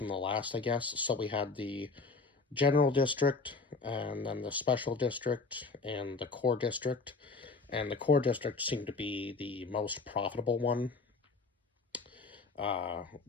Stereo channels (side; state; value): right; quieter; 4.1 dB